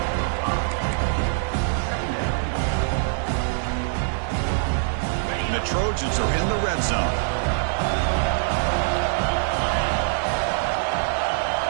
And the Trojans are in the red zone.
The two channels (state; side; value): silent; left; digital silence